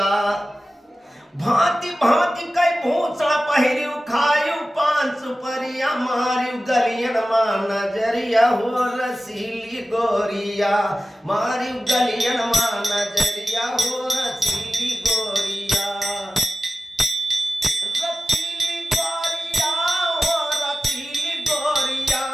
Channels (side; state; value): both; normal; correlation 0.95